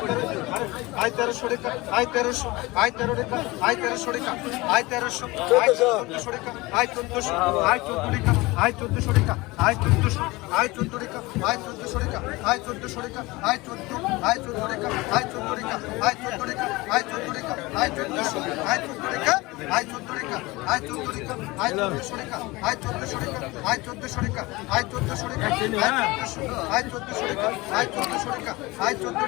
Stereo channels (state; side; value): quieter; right; 22.0 dB